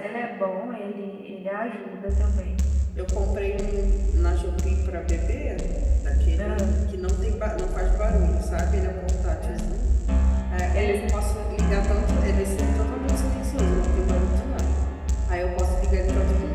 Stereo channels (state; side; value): identical; both; correlation 1.00